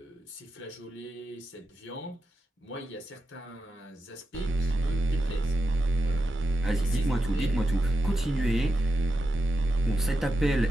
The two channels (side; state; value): both; normal; correlation 0.89